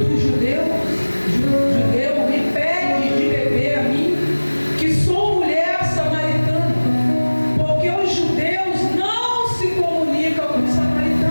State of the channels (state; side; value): inverted; both; correlation -1.00